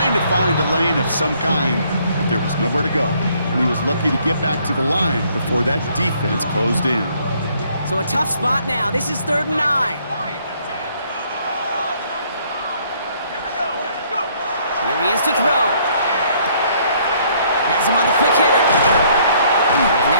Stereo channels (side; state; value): both; inverted; correlation -0.65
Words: to find a lane of some kind, but there was nowhere to go. And he was lucky to get back to the line before that defense closed in. So a tough spot now. This is 3rd and 9. Here he is to throw. Has him on the quick hitter. And